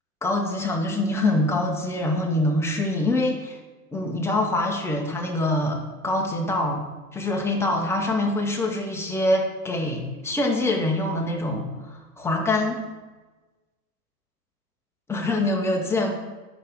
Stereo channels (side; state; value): both; normal; correlation 0.48